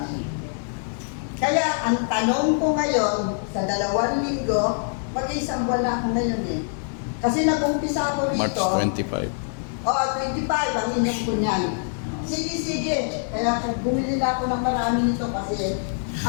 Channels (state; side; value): silent; right; 62 dB below the other